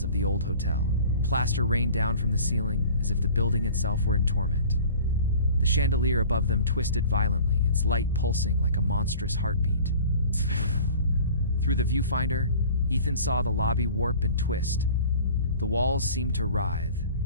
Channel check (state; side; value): inverted; both; correlation -0.45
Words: of the old hotel. Plaster rained down from the ceiling as if the building itself were in torment. The chandelier above them twisted violently, its light pulsing like a monstrous heartbeat. Through the viewfinder, Ethan saw the lobby warp and twist. The walls seemed to writhe,